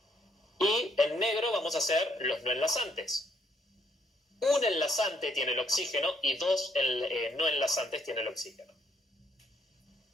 Y en negro vamos a hacer los no enlazantes. Un enlazante tiene el oxígeno y 2 no enlazantes tiene el oxígeno.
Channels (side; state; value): both; normal; correlation 0.70